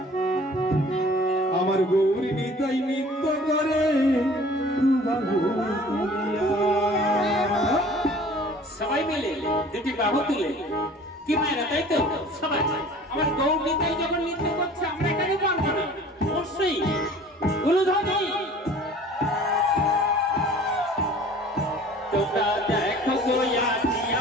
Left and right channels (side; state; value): both; normal; correlation 0.48